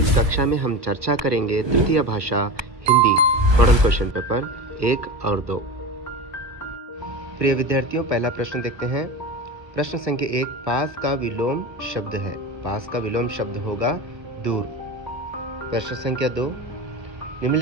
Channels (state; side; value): late; left; 1.2 ms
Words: कक्षा में हम चर्चा करेंगे तृतीय भाषा हिंदी मॉडल क्वेश्चन पेपर 1 और 2। प्रिय विद्यार्थियों, पहला प्रश्न देखते हैं। प्रश्न संख्या 1, पास का विलोम शब्द है। पास का विलोम शब्द होगा दूर। प्रश्न संख्या 2,